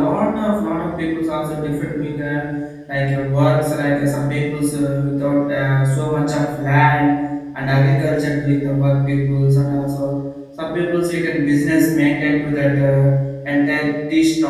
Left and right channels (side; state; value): both; identical; correlation 1.00